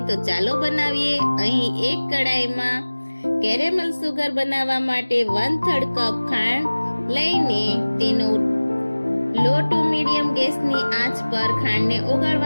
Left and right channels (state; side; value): inverted; both; correlation -1.00